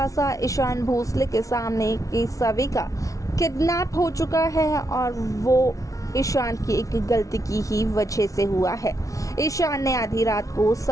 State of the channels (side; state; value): right; late; 0.16 ms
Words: ईशान भोसले के सामने कि सभी का किडनैप हो चुका है और वो ईशान की एक गलती की ही वजह से हुआ है। ईशान ने आधी रात को